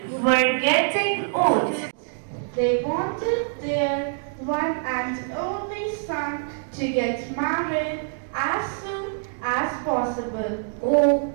were getting old. They wanted their one and only son to get married as soon as possible. Oh,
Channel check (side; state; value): left; silent; digital silence